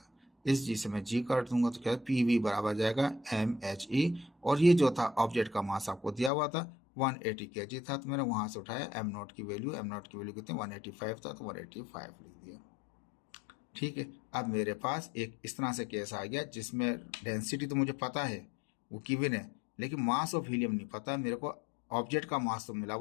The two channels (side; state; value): right; drops out; at 6.3 s